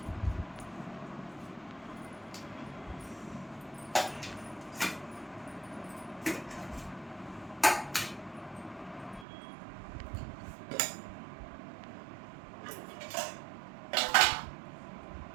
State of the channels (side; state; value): left; drops out; at 9.2 s